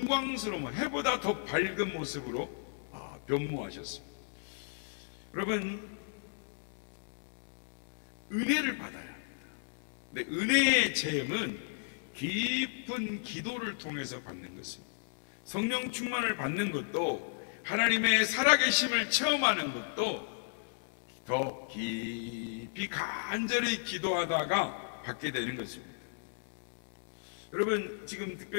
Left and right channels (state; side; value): silent; right; 55 dB below the other